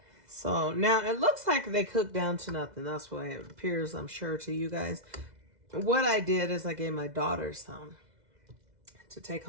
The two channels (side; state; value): left; late; 2.0 ms